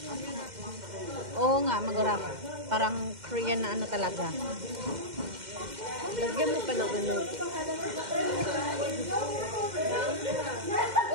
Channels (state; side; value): late; left; 2.1 ms